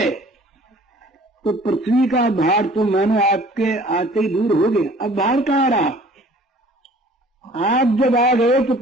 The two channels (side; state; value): both; normal; correlation 0.51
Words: तो पृथ्वी का भार तो मानो आपके आते ही दूर हो गया। अब भार कहाँ रहा? आप जब आ गए तो